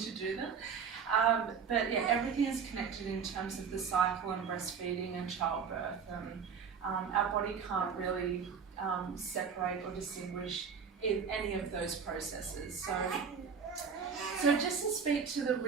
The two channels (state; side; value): quieter; left; 6.4 dB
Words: do them. But yeah, everything is connected in terms of the cycle and breastfeeding and childbirth. Our body can't really separate or distinguish in any of those processes. So just to speak to the